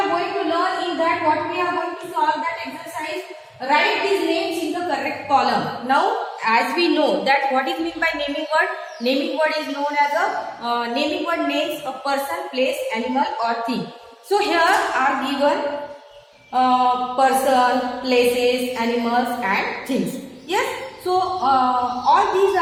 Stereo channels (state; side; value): identical; both; correlation 1.00